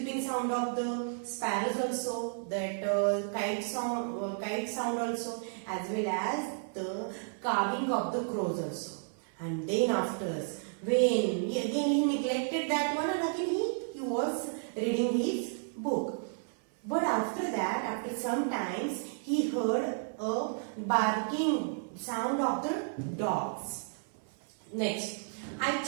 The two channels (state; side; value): silent; left; 56 dB below the other